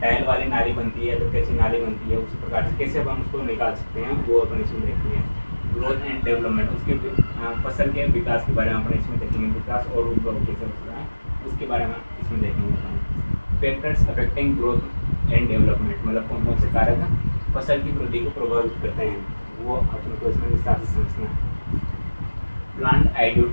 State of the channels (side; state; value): both; inverted; correlation -1.00